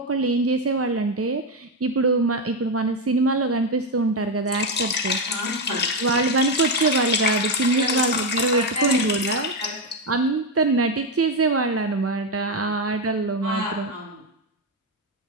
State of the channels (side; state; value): both; normal; correlation 0.08